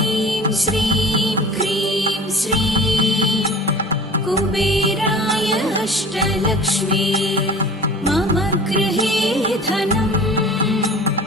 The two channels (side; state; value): both; normal; correlation 0.41